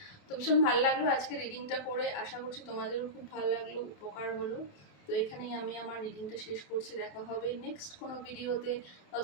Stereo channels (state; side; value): late; right; 28 ms